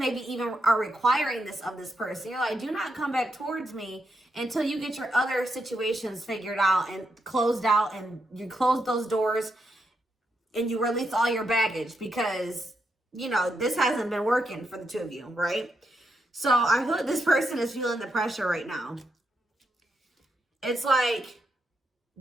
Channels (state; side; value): normal; both; correlation 0.82